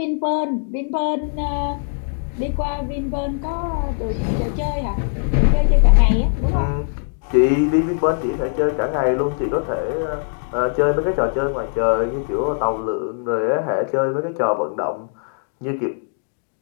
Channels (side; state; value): right; silent; digital silence